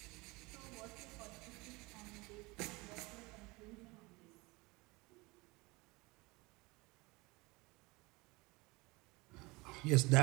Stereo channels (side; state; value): left; quieter; 24.2 dB